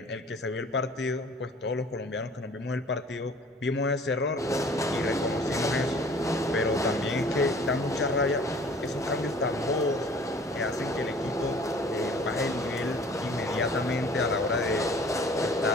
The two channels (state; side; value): normal; both; correlation 0.50